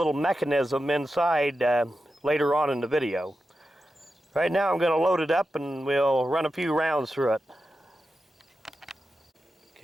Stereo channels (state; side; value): normal; both; correlation 0.90